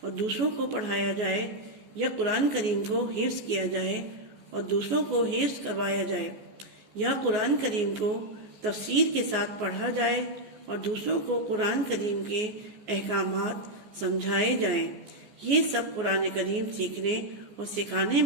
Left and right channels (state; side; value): late; left; 14 ms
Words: اور دوسروں کو پڑھایا جائے، یا قرآن کریم کو حفظ کیا جائے اور دوسروں کو حفظ کروایا جائے، یا قرآن کریم کو تفسیر کے ساتھ پڑھا جائے اور دوسروں کو قرآن کریم کے احکامات سمجھائے جائیں۔ یہ سب قرآن کریم سیکھنے اور سکھانے